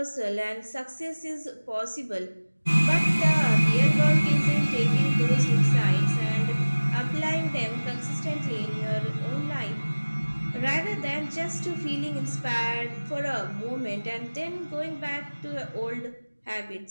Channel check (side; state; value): both; inverted; correlation -1.00